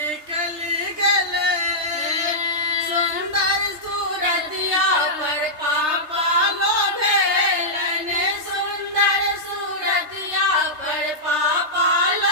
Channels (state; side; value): late; left; 3.3 ms